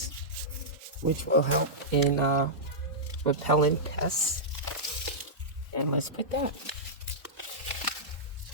which will help in repelling pests. And let's put that.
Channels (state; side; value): normal; both; correlation -0.12